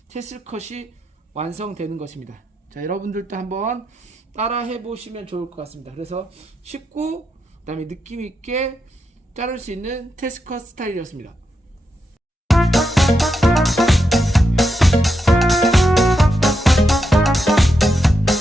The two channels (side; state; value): both; normal; correlation 0.85